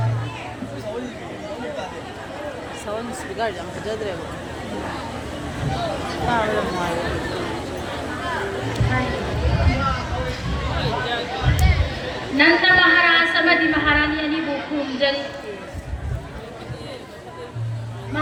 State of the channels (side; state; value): both; identical; correlation 1.00